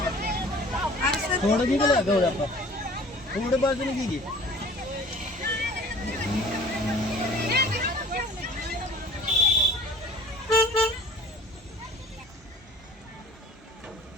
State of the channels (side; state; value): both; normal; correlation 0.47